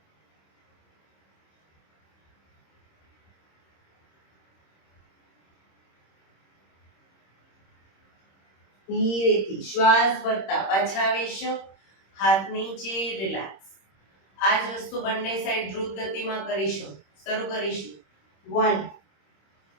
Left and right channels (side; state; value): right; late; 26 ms